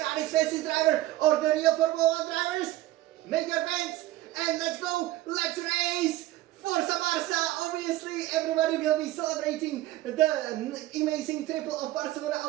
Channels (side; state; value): left; quieter; 15.9 dB